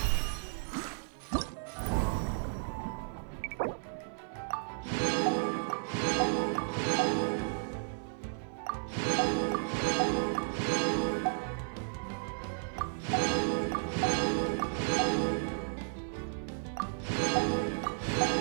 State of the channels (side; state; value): left; silent; 55 dB below the other